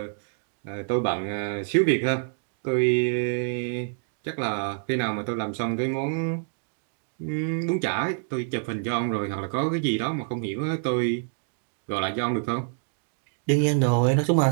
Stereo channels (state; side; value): silent; left; digital silence